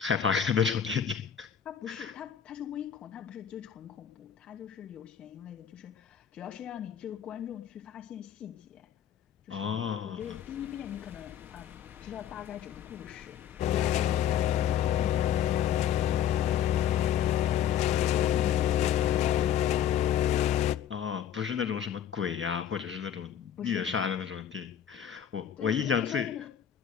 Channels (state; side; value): quieter; right; 9.6 dB